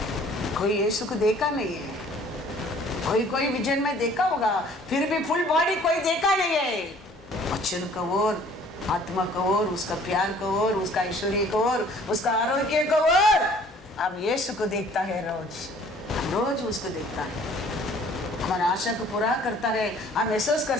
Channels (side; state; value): both; normal; correlation 0.55